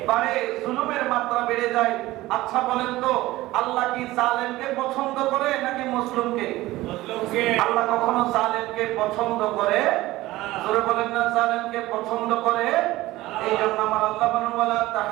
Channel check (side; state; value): left; quieter; 17.7 dB